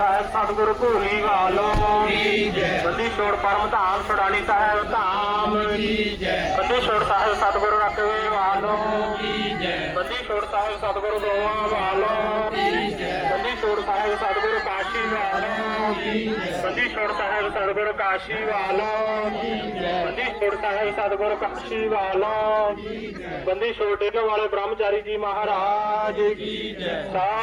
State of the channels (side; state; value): both; identical; correlation 1.00